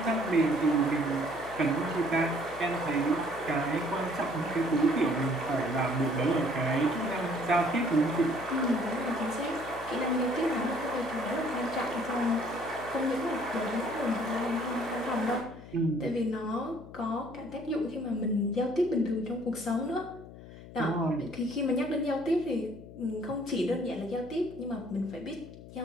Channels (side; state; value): left; noise; hum, 16 dB below the sound